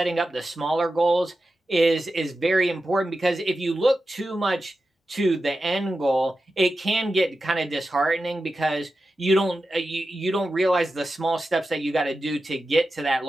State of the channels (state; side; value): normal; both; correlation 0.92